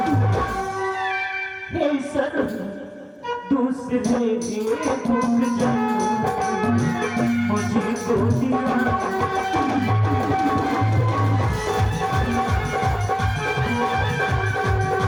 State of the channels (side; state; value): both; identical; correlation 1.00